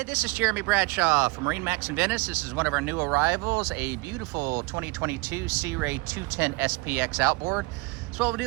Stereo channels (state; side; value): quieter; left; 24.1 dB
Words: this is Jeremy Bradshaw from MarineMax in Venice. This is one of our new arrivals, a beautiful 2022 Sea Ray 210 SPX outboard. So what we'll